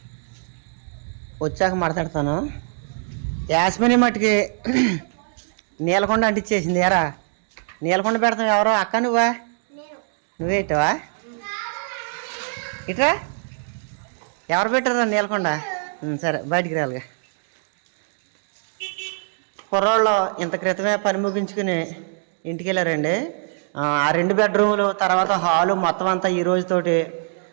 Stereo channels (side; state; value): left; silent; digital silence